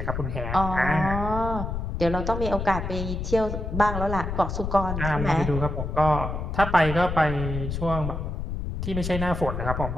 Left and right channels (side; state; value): left; noise; rumble, 4 dB below the sound